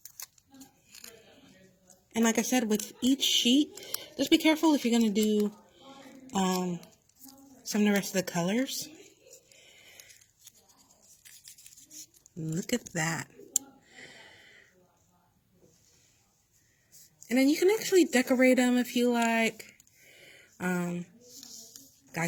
And like I said, with each sheet, just be careful if you're going to do some of the rest of the colors. Look at that. And then you can actually decorate them if you like. Guys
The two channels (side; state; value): both; identical; correlation 1.00